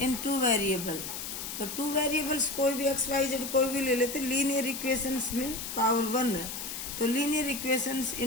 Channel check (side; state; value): left; noise; hiss, 7 dB below the sound